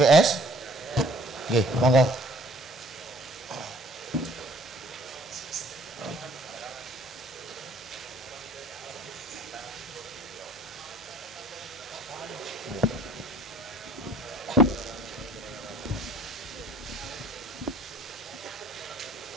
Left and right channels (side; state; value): both; normal; correlation 0.56